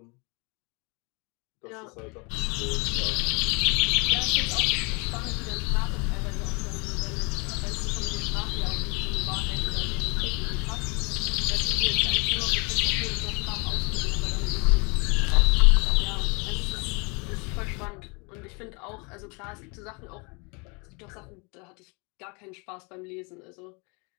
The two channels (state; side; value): quieter; right; 31.1 dB